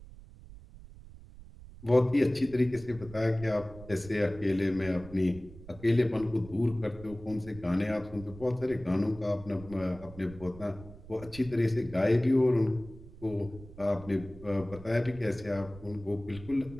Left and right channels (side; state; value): right; noise; rumble, 17 dB below the sound